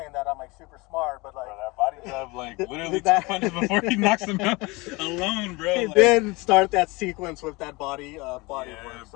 that I'm like super smart, but like that body jab like literally 2 punches before he knocks him out alone, bro. He did start that sequence with that body work.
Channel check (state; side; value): quieter; right; 24.6 dB